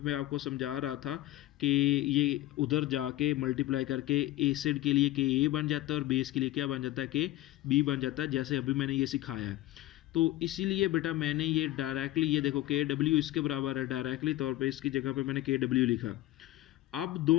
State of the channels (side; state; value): right; quieter; 15.8 dB